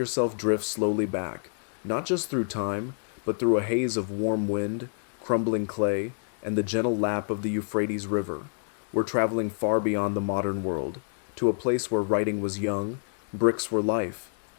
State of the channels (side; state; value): right; silent; digital silence